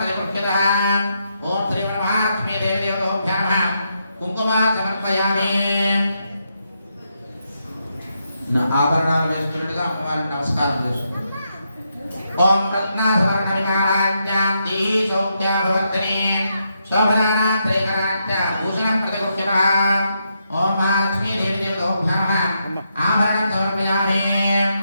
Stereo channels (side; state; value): both; inverted; correlation -0.81